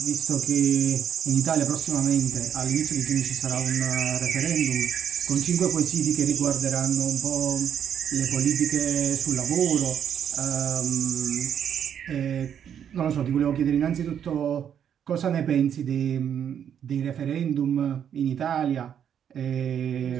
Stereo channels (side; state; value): left; quieter; 8.8 dB